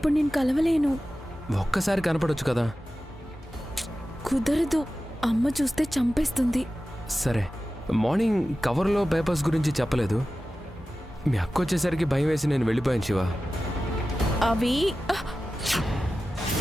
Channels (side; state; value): both; normal; correlation 0.94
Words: నేను కలవలేను. ఒక్కసారి కనపడొచ్చు కదా. కుదరదు, అమ్మ చూస్తే చంపేస్తుంది. సరే, మార్నింగ్ కవర్లో పేపర్స్ గురించి చెప్పలేదు. మీ అక్క వచ్చేసరికి భయం వేసి నేను వెళ్ళిపోయాను శివ. అవి